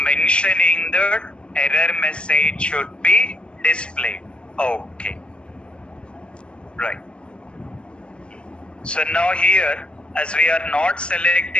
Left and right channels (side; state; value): right; late; 0.057 ms